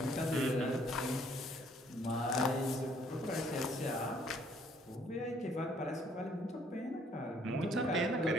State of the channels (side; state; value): both; normal; correlation 0.63